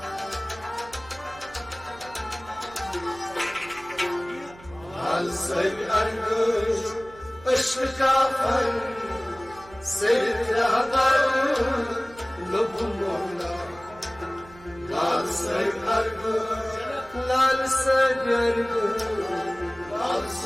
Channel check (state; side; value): noise; right; hum, 21 dB below the sound